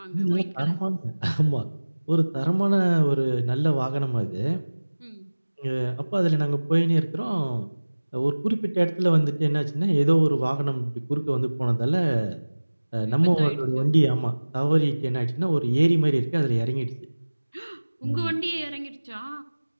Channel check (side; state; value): both; inverted; correlation -1.00